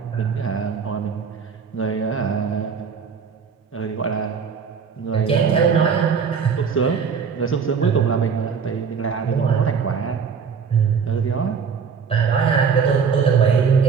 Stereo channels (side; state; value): left; quieter; 6.2 dB